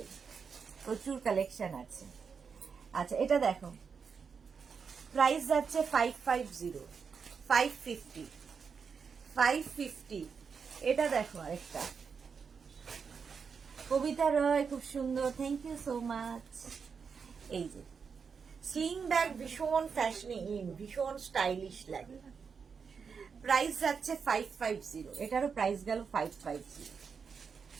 প্রচুর কালেকশন আছে। আচ্ছা এটা দেখো, প্রাইস যাচ্ছে 550। এটা দেখো আরেকটা, কবিতা রয়, খুব সুন্দর, থ্যাংক ইউ সো মাচ। এই যে স্লিং ব্যাগ ভীষণ ফ্যাশনি ভীষণ স্টাইলিশ লাগে। প্রাইস যাচ্ছে 550, এটারও প্রাইস গেল 550।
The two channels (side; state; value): left; quieter; 5.9 dB